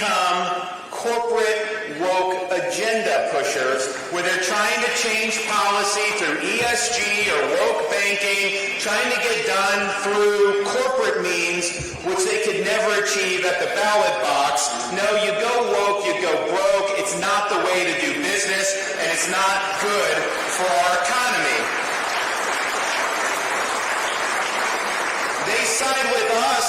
corporate woke agenda pushers where they're trying to change policy through ESG or woke banking, trying to get done through corporate means, which they could never achieve at the ballot box. No, you go woke, you go broke. It's not the way to do business, and it's not good for our economy. They side with us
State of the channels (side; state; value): both; identical; correlation 1.00